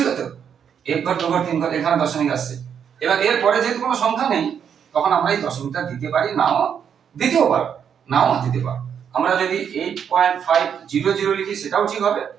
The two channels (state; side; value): quieter; left; 7.9 dB